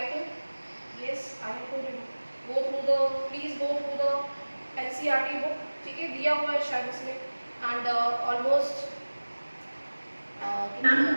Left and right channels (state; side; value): inverted; both; correlation -1.00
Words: think, yes I have to go through the, please go through the NCERT book, ठीक है, दिया हुआ है शायद उसमें। And almost